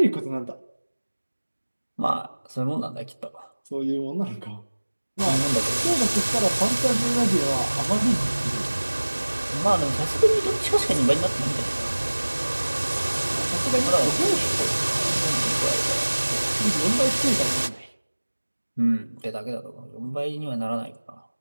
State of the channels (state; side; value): inverted; both; correlation -1.00